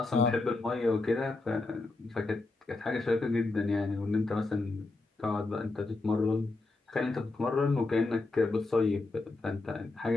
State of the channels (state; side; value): quieter; right; 3.3 dB